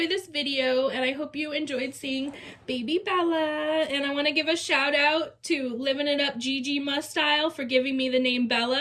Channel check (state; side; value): identical; both; correlation 1.00